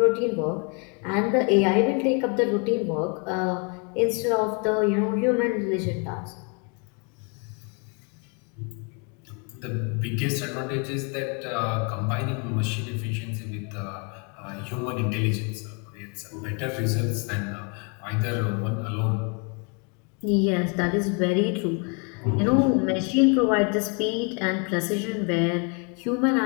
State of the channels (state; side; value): quieter; right; 35.4 dB